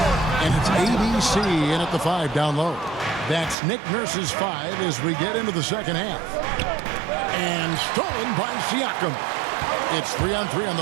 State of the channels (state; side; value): drops out; left; at 3.6 s